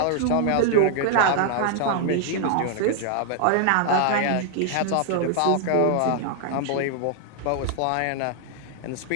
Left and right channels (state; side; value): different; both; correlation -0.01